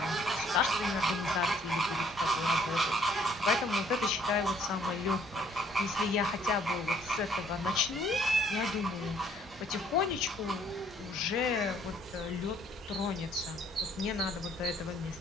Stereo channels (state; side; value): normal; both; correlation 0.62